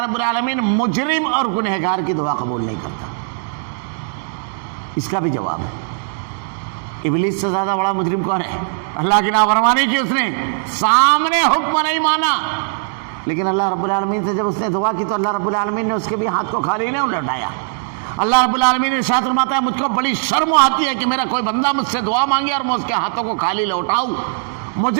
رب العالمین مجرم اور گنہگار کی دعا قبول نہیں کرتا. اس کا بھی جواب ہے. ابلیس سے زیادہ بڑا مجرم کون ہے؟ اللہ کی نافرمانی کی اس نے، سامنے حکم نہیں مانا. لیکن اللہ رب العالمین سے جب اس نے دعا کی تو اللہ رب العالمین نے اس کے بھی ہاتھ کو خالی نہیں لوٹایا. اللہ رب العالمین نے ارشاد فرماتا ہے مجھ کو بڑی شرم آتی ہے کہ میرا کوئی بندہ مجھ سے دعا مانگے اور میں اس کے ہاتھوں کو خالی لوٹاؤں.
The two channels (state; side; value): silent; left; digital silence